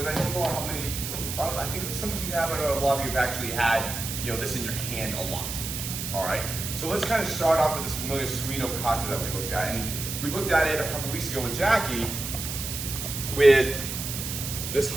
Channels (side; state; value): right; noise; hiss, 5 dB below the sound